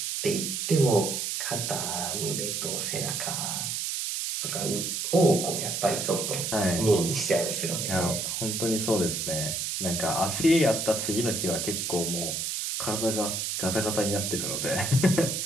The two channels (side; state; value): right; noise; hiss, 2 dB below the sound